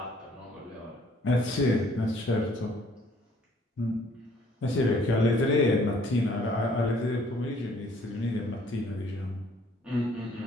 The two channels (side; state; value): both; normal; correlation 0.60